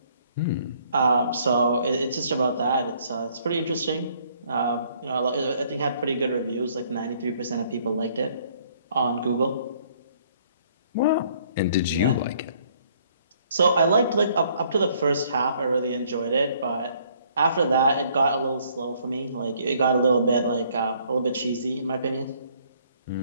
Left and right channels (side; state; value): both; inverted; correlation -0.63